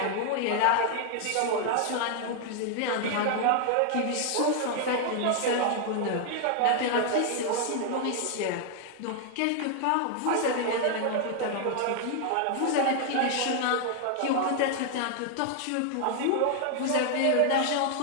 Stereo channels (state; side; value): different; both; correlation 0.00